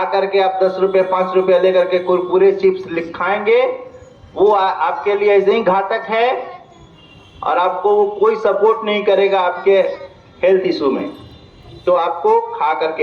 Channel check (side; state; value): both; identical; correlation 1.00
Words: के आप 10 रुपये 5 रुपये लेकर के कुरकुरे चिप्स खाएंगे, वो आपके लिए ऐसे ही घातक है और आपको वो कोई सपोर्ट नहीं करेगा आपके हेल्थ इशू में। तो आपको खा करके